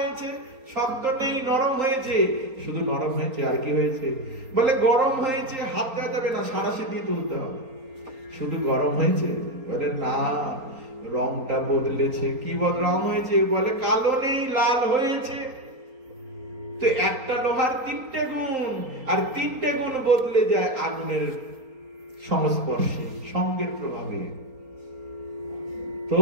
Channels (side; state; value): left; late; 4.3 ms